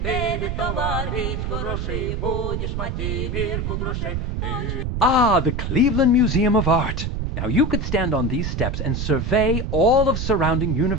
Ah, the Cleveland Museum of Art. Now you could stand on these steps and survey all of surrounding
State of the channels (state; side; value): noise; right; rumble, 2 dB below the sound